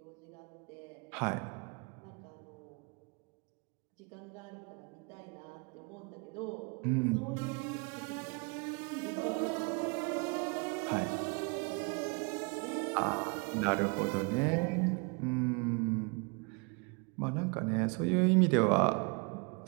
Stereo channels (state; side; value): quieter; left; 33.6 dB